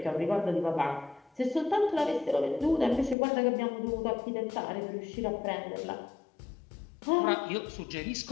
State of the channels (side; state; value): right; drops out; at 3.2 s